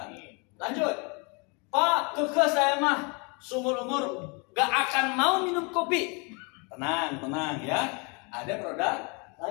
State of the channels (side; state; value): right; quieter; 32.1 dB